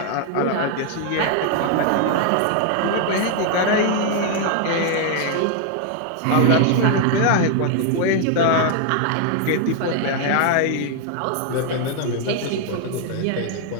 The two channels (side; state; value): both; different; correlation 0.00